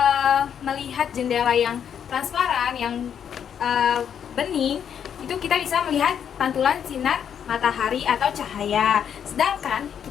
melihat jendela yang transparan, yang bening, itu kita bisa melihat pantulan sinar matahari atau cahaya. Sedangkan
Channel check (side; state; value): right; quieter; 8.4 dB